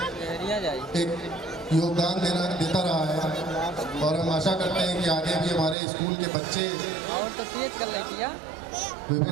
एक योगदान देता रहा है। और हम आशा करते हैं कि आगे भी हमारे स्कूल के बच्चे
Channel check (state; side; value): drops out; left; at 5.8 s